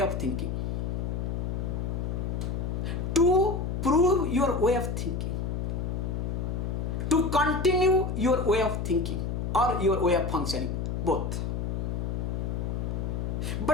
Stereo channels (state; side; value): noise; left; hum, 1 dB below the sound